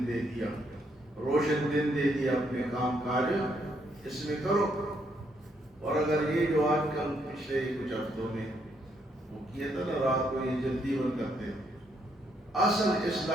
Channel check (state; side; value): normal; both; correlation 0.74